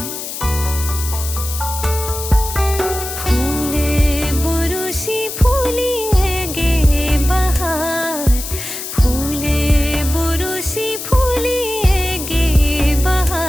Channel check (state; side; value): noise; left; hiss, 7 dB below the sound